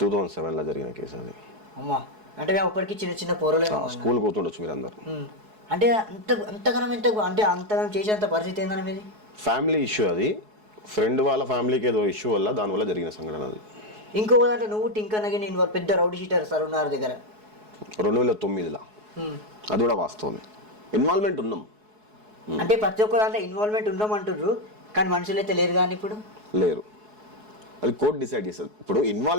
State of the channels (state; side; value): late; left; 4.7 ms